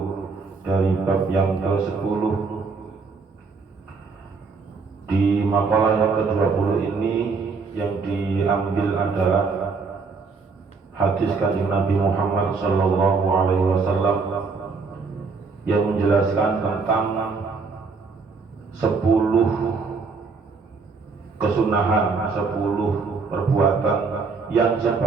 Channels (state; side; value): quieter; left; 4.6 dB